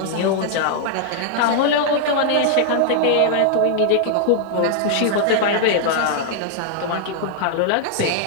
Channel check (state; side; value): different; both; correlation -0.01